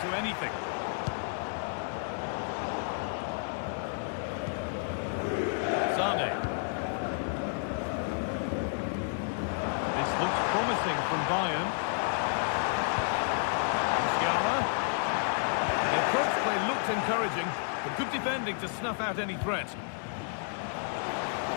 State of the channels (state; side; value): silent; right; 57 dB below the other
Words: to anything. Sane. This looks promising from Bayern. Musiala. The approach play looked encouraging. But good defending to snuff out any threat.